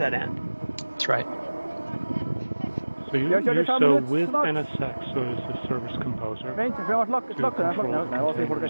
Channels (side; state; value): both; inverted; correlation -1.00